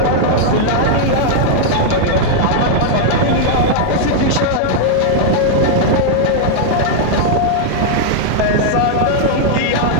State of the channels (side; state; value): both; different; correlation -0.01